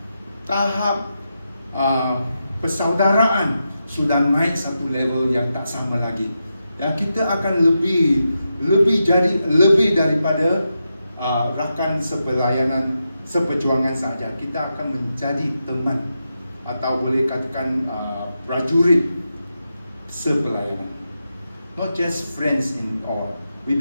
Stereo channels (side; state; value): both; inverted; correlation -0.87